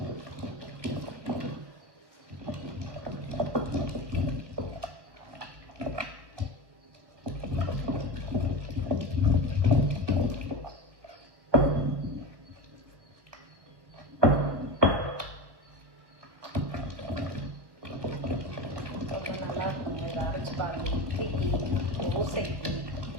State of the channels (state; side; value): late; left; 1.2 ms